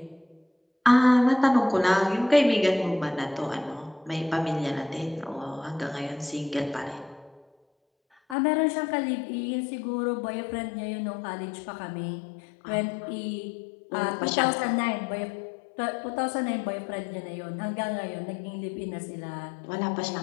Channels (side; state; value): right; drops out; at 8.3 s